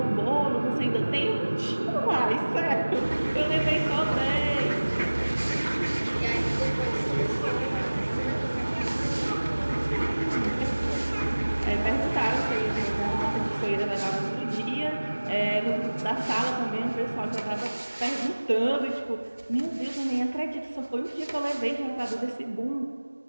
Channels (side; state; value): both; inverted; correlation -1.00